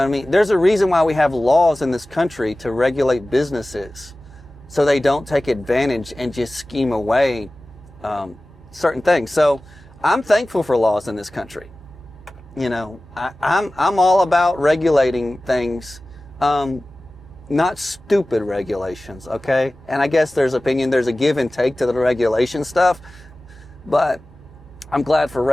I mean? There's a reason why we have laws in this country to regulate businesses, so they don't take advantage and just scheme away certain things. So I'm thankful for laws in this country. You know, I'm all about regulating things, not stupid regulations, okay? And I guess there's a give and take to the regulation stuff, but I'm glad for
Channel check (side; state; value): both; normal; correlation 0.97